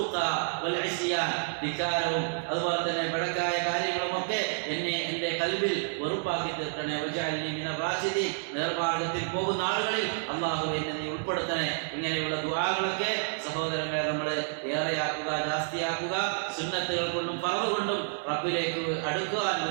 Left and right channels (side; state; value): left; silent; digital silence